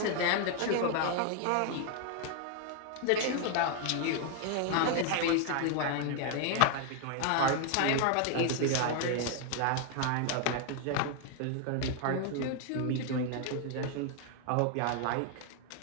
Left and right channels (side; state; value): both; different; correlation 0.00